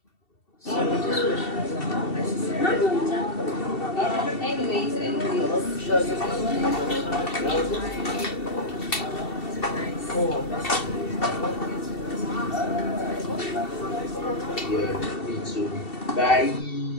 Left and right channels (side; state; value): right; late; 2.7 ms